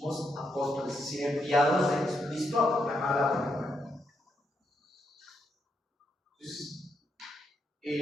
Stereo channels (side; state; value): both; normal; correlation 0.80